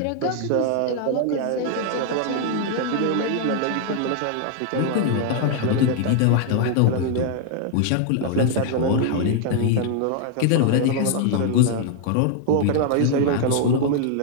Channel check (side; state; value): both; different; correlation 0.00